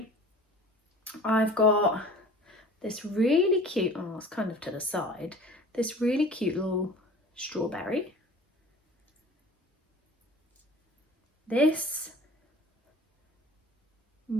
I've got this really cute, oh it's kind of to the side, this really cute little strawberry. This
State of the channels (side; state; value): both; normal; correlation 0.44